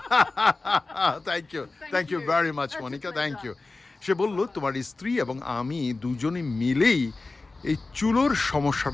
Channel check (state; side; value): quieter; right; 3.5 dB